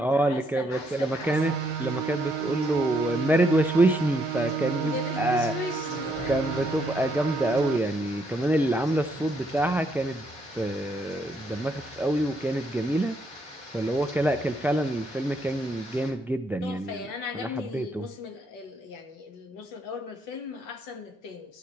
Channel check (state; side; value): normal; both; correlation 0.73